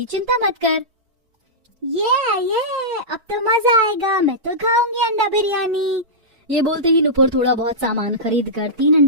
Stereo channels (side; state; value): left; late; 4.5 ms